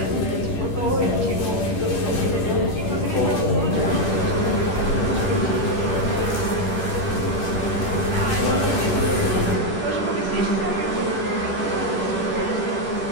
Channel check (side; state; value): right; late; 10 ms